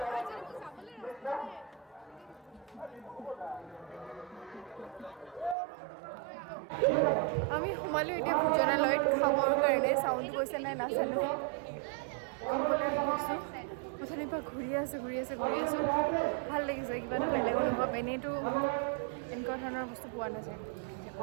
আমি সোমালোঁ এতিয়া ভোজনালয়ত খাবৰ কাৰণে চাউণ্ড গৈছে নাই নাজানো খাবলৈ আহিছোঁ অথনিৰ পৰা ঘূৰি আছোঁ ভাল লাগিছে কিবা এটা বেলেগ অনুভৱ এনেইতো এনেকুৱা ধৰণৰ বস্তু পোৱা নাযায়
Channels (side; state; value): left; drops out; at 5.6 s